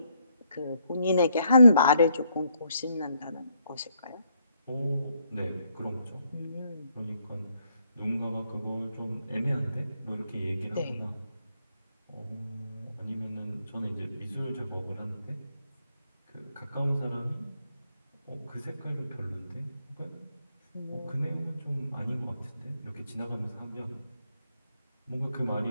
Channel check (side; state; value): both; inverted; correlation -0.73